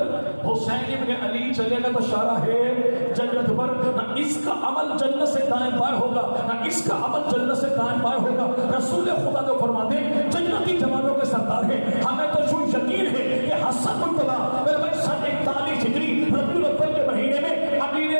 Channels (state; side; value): inverted; both; correlation -1.00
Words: حسین ابن علی چلے گا تو شاہراہ جنت پر. نہ اس کا عمل جنت سے دائیں بائیں ہوگا، نہ اس کا عمل جنت سے دائیں بائیں ہوگا. رسول خدا جو فرماتے ہیں جنتی جوانوں کے سردار ہیں. ہمیں تو جو یقین ہے کہ حسن مرتبہ میرے بھائی 41 ہجری ربیع الاول کے مہینے میں